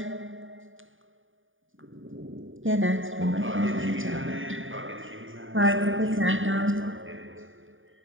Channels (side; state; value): left; late; 0.57 ms